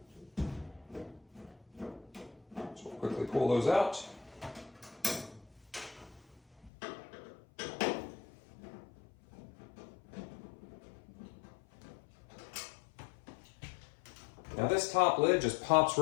So we'll quickly pull those out. Now this top lid just pops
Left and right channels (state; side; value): drops out; right; at 6.7 s